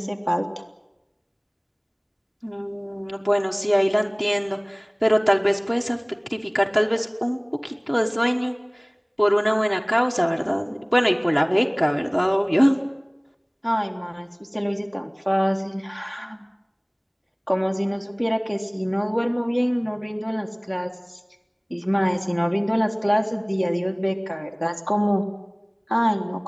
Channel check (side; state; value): both; identical; correlation 1.00